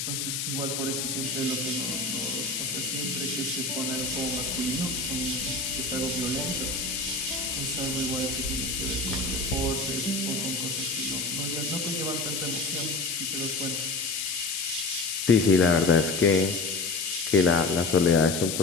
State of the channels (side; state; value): left; noise; hiss, 2 dB below the sound